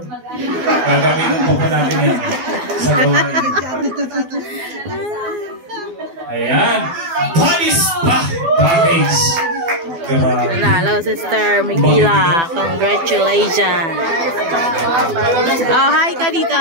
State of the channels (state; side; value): late; left; 12 ms